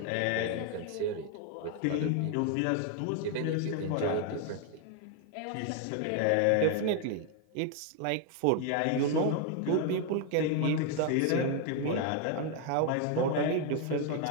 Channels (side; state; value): both; different; correlation 0.01